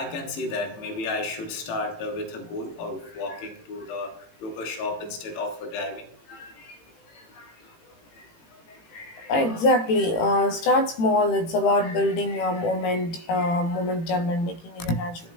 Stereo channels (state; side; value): late; right; 18 ms